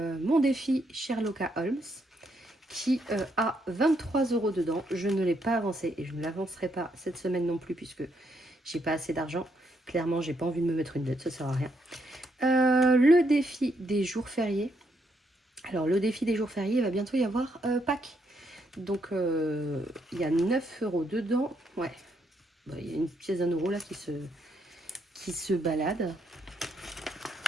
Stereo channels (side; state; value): both; normal; correlation 0.76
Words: défi Sherlock Holmes qui a 23 € dedans. Je ne l'ai pas avancé et je ne l'avancerai pas cette semaine non plus puisque j'ai pas assez d'argent. Clairement, j'ai pas envie de me mettre une dette, ça sert à rien. Le défi des jours fériés. Alors, le défi des jours fériés, il va bientôt y avoir Pâques. Donc, il y a 9 € dedans. Ouais, bah, il y a une pièce d'1 € là qui se balade.